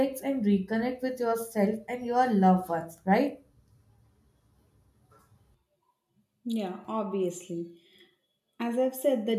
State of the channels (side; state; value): both; identical; correlation 1.00